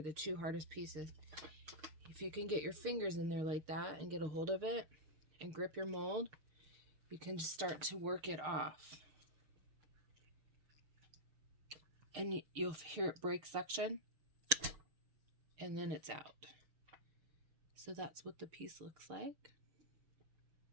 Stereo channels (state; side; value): late; left; 6.4 ms